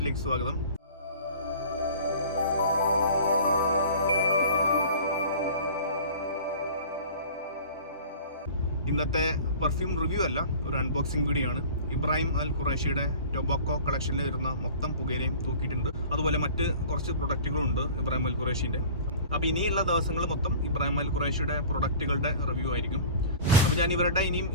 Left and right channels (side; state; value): both; inverted; correlation -0.42